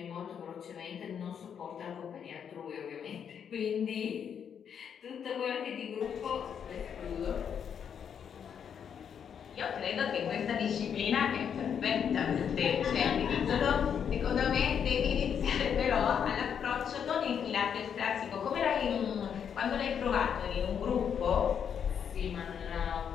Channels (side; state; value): right; quieter; 7.9 dB